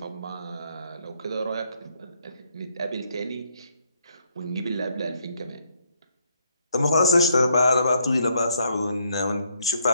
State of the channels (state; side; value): inverted; both; correlation -0.72